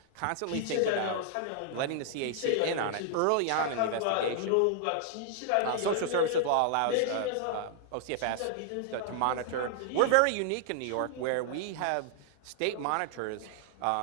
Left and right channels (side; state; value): both; different; correlation -0.01